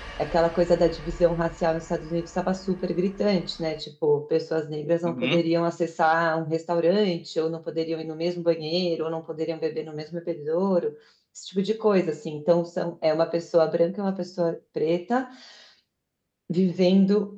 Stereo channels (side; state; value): both; identical; correlation 1.00